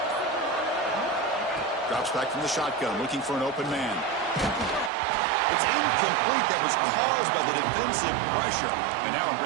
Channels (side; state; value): left; drops out; at 4.9 s